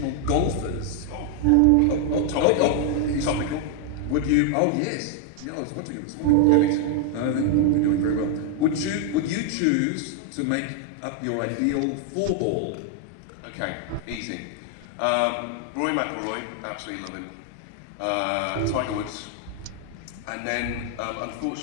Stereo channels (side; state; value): both; different; correlation 0.00